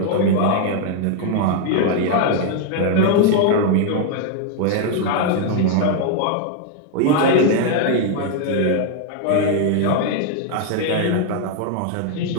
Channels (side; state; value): both; different; correlation 0.00